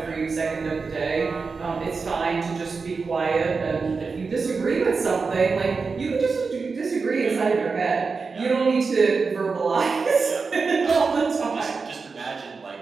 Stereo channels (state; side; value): quieter; left; 4.7 dB